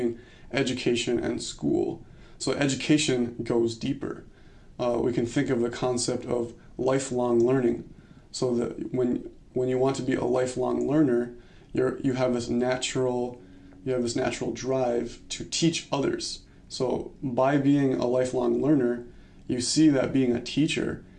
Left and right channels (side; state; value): both; identical; correlation 1.00